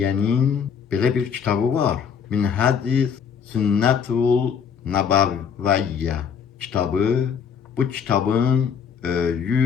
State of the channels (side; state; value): right; quieter; 7.1 dB